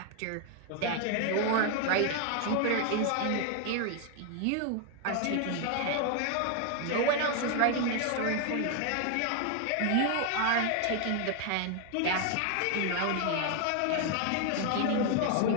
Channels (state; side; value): different; both; correlation 0.00